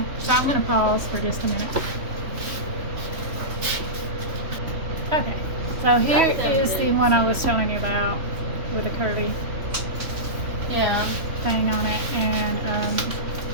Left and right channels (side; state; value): left; late; 3.4 ms